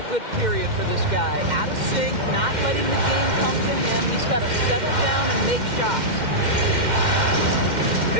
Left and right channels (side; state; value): left; late; 2.1 ms